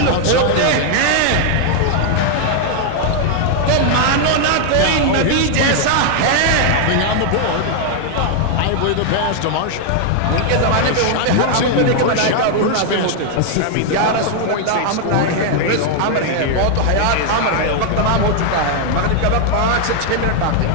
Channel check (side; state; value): both; different; correlation 0.00